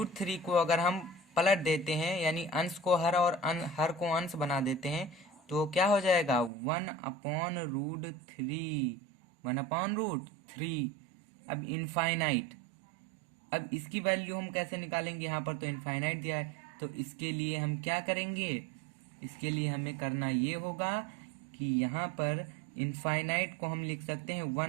को अगर हम पलट देते हैं, यानी अंश को हर और हर को अंश बना देते हैं, तो क्या हो जाएगा, 1/√3। अब इनफाइनाइट, अब इसकी वैल्यू हम कैसे निकालेंगे, यहाँ पर तो इनफाइनाइट दिया है, तो इसके लिए हम क्या करेंगे, इसके लिए हमें करना ये होगा कि यहाँ पर इनफाइनाइट को हम लिख सकते हैं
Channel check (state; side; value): drops out; left; at 6.5 s